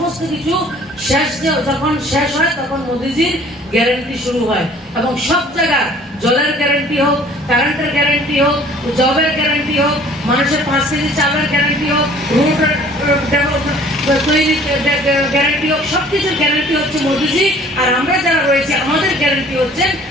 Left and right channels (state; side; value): normal; both; correlation 0.52